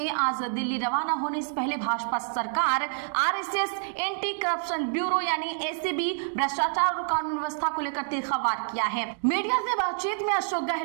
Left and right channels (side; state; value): left; silent; digital silence